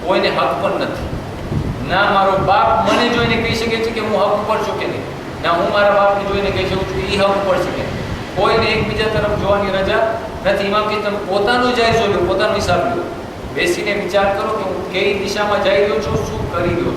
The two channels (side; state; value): both; identical; correlation 1.00